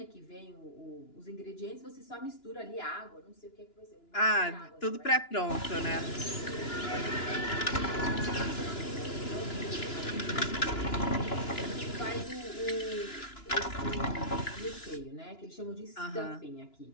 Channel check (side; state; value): right; late; 2.9 ms